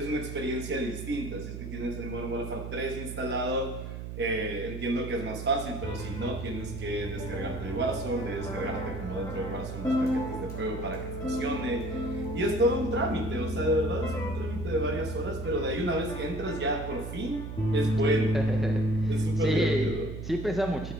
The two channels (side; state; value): right; noise; hum, 7 dB below the sound